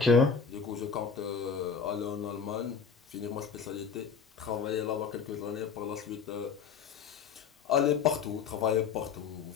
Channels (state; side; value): quieter; right; 6.1 dB